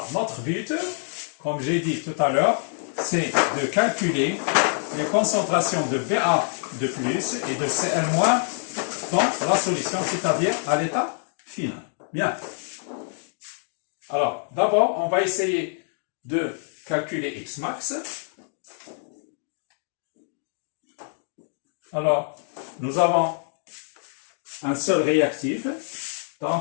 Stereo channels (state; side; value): silent; right; 58 dB below the other